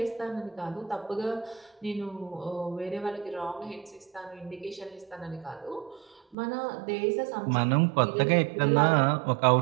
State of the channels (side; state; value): left; drops out; at 6.4 s